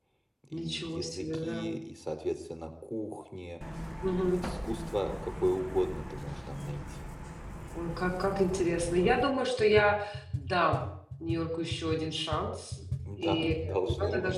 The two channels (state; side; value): identical; both; correlation 1.00